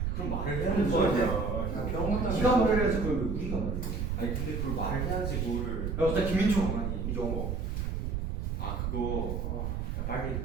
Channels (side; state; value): right; noise; rumble, 1 dB below the sound